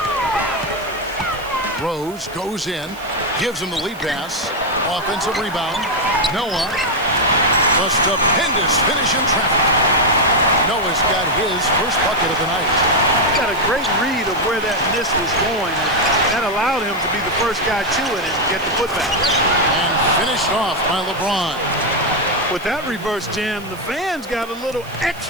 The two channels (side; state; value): right; noise; hiss, 22 dB below the sound